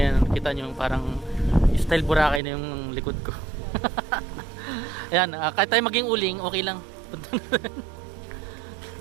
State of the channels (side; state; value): left; drops out; at 2.4 s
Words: kita nyo parang style Boracay na yung likod ko. Ayan, kahit tayo maging uling, okay lang.